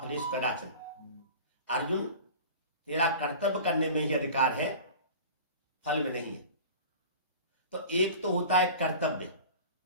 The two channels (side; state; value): both; inverted; correlation -0.38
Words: फलेषु कदाचन। अर्जुन, तेरा कर्तव्य करने में ही अधिकार है, फल में नहीं है। तो एक तो होता है कर्तव्य